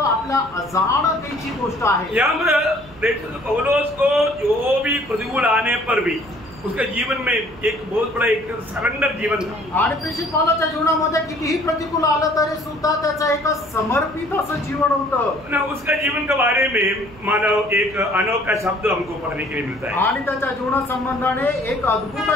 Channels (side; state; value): right; noise; hum, 20 dB below the sound